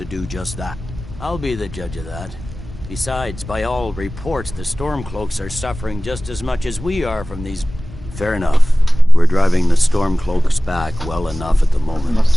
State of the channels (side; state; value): both; normal; correlation 0.97